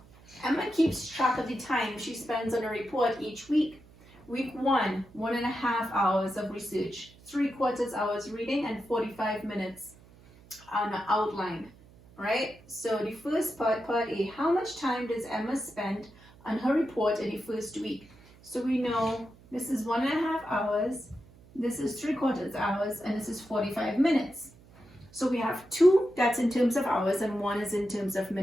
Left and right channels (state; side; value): noise; right; hum, 24 dB below the sound